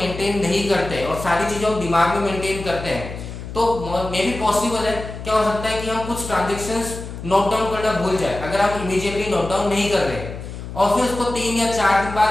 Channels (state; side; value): noise; left; hum, 10 dB below the sound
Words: नहीं करते और सारी चीजें हम दिमाग में मेंटेन करते हैं तो मे भी पॉसिबल है, क्या हो सकता है कि हम कुछ ट्रांजैक्शंस नोट डाउन करना भूल जाए. अगर आप इमीडिएटली नोट डाउन नहीं कर रहे और फिर उसको 3 या 4 दिन बाद